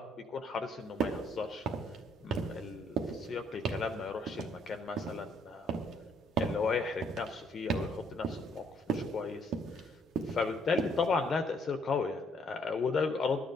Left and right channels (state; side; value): normal; both; correlation 0.68